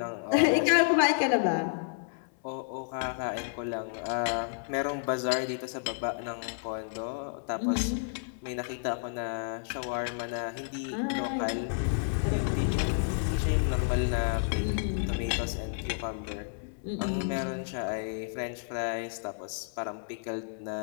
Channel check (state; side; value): silent; right; 57 dB below the other